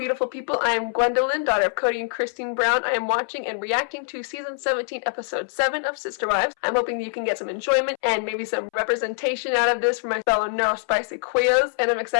people, I am Gwendolyn, daughter of Cody and Christine Brown. I am watching and reacting to season 17, episode 7 of Sister Wives. I'm hoping that you can get some enjoyment and maybe some representation out of this for my fellow neurospicy queers, and I'm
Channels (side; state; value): right; silent; 63 dB below the other